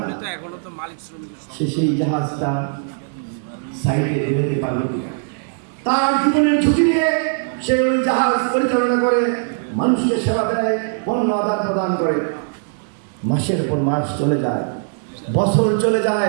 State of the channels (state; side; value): silent; left; digital silence